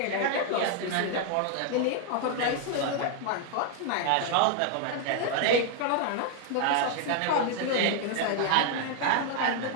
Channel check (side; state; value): both; different; correlation 0.00